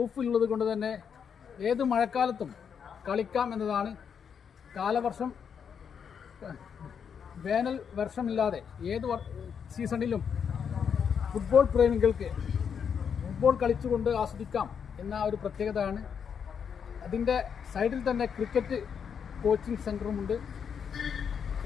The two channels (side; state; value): right; quieter; 7.2 dB